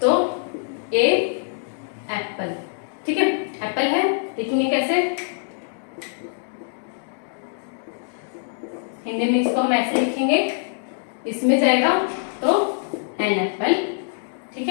तो ए एप्पल। ठीक है, एप्पल है, लिखेंगे कैसे, हिंदी में इसको हम ऐसे लिखेंगे, इसमें जाएगा तो एन एप्पल। ठीक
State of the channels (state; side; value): silent; right; digital silence